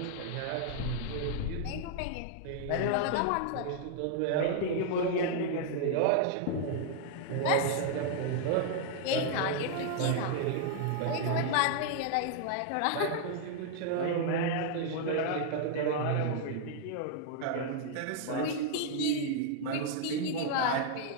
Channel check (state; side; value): different; both; correlation 0.00